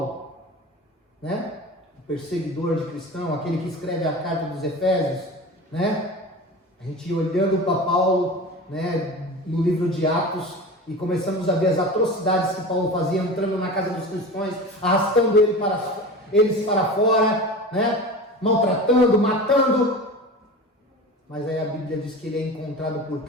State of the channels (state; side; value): normal; both; correlation 0.32